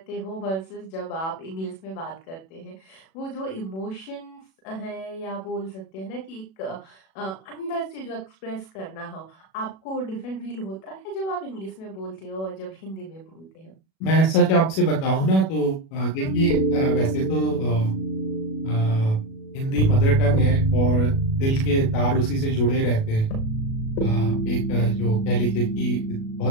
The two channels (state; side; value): late; right; 37 ms